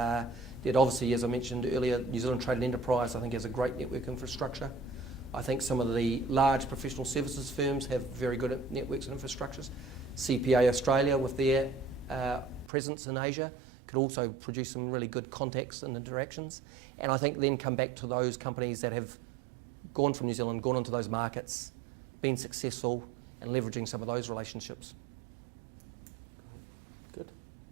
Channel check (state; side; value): drops out; left; at 12.7 s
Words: obviously, as I mentioned earlier, New Zealand Trade and Enterprise I think has a great network infrastructure. I think some of the large professional services firms have very good networks and infrastructures. CPA Australia with their presence in Asia could also produce some really good contacts and interactions. And I think then come back to those companies that have gone from New Zealand, gone into those markets, been successful, and leveraging some of those relationships. Great. Good.